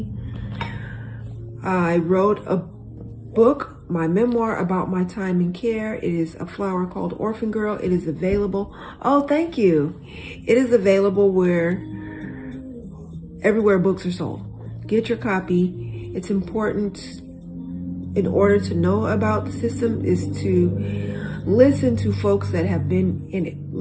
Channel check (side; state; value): both; identical; correlation 1.00